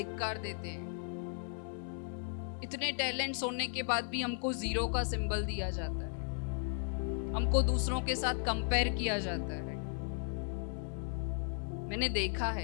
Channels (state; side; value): silent; right; 54 dB below the other